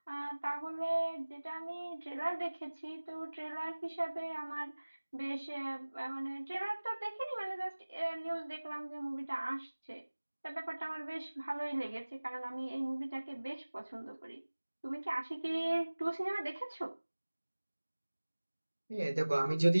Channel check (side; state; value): both; inverted; correlation -1.00